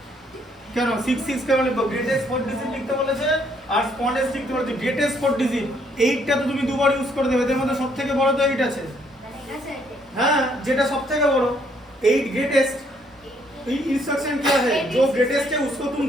কেন 66 কেন লিখবো গ্রেটেস্ট 4 ডিজিট লিখতে বলেছে আর স্মলেস্ট লিখতে বলেছে গ্রেটেস্ট 4 ডিজিট 8টা তো তুমি দুবার ইউজ করে দেবে এর মধ্যে সবথেকে বড় তো 8 আছে हाँ যেটা সবথেকে বড় 8 ग्रेटेस्ट इंस्ट्रक्शन क्या है जो ग्रेटेस्ट है उसको तुम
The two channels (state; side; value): normal; both; correlation 0.68